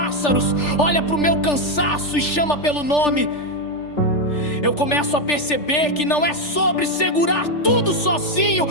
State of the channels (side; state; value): right; late; 3.4 ms